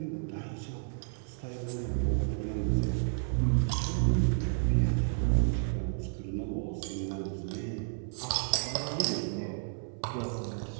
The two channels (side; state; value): left; silent; 57 dB below the other